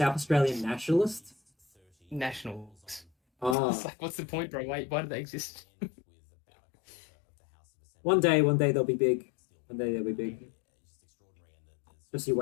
Australian nationalist? Nationals. Oh. It's like, what's the point, bro? Why do they exist? One day they'll be big. One day they'll be big. Just you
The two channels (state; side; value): drops out; right; at 3.6 s